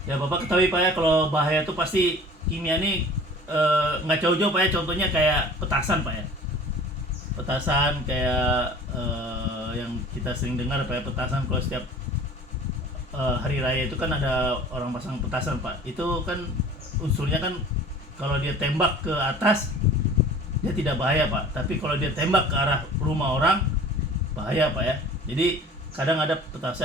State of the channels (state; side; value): normal; both; correlation 0.45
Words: ya Bapak ketahui Pak ya, kalau bahaya itu pasti kimia ini nggak jauh-jauh Pak ya. Contohnya kayak petasan Pak ya. Petasan kayak yang kita sering dengar Pak ya, petasan kalau setiap hari raya itu kan ada orang pasang petasan Pak. Itu kan unsurnya kan kalau dia tembak ke atas dia tidak bahaya Pak, tapi kalau dia tembak ke arah rumah orang bahaya Pak ya. Jadi kadang ada